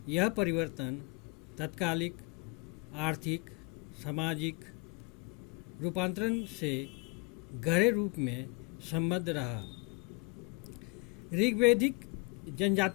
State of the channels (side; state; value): right; quieter; 29.6 dB